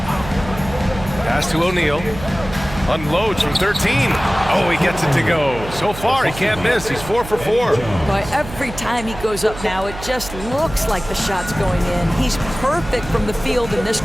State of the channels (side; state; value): right; noise; hum, 12 dB below the sound